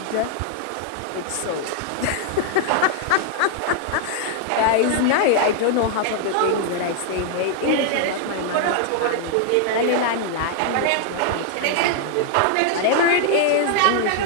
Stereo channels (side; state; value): both; different; correlation 0.00